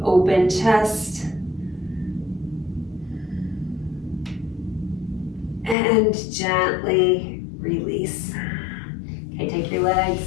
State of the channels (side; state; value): right; drops out; at 5.8 s